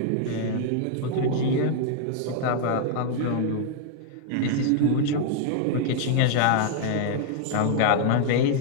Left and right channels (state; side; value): different; both; correlation -0.01